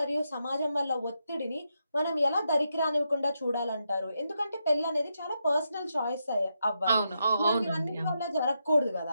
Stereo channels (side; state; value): both; inverted; correlation -0.84